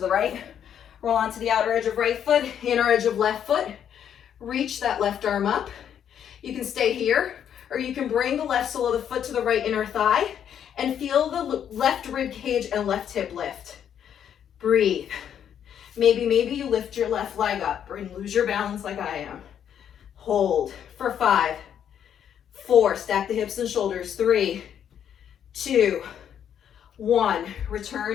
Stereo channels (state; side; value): quieter; right; 9.1 dB